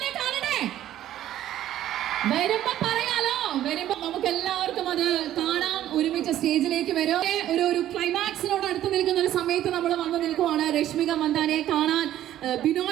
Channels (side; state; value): left; quieter; 12.5 dB